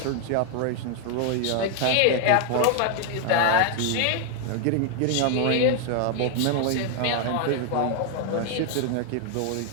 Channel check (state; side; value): different; both; correlation 0.00